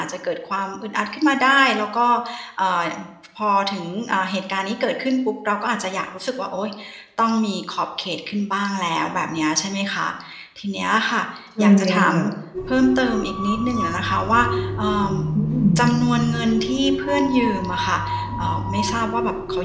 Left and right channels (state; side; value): identical; both; correlation 1.00